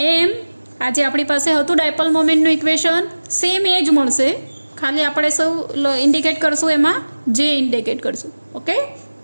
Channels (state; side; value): inverted; both; correlation -1.00